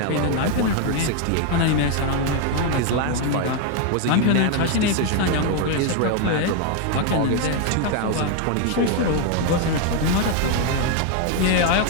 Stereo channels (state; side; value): different; both; correlation 0.01